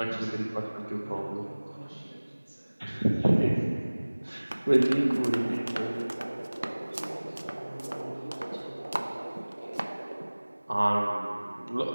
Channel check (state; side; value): inverted; both; correlation -1.00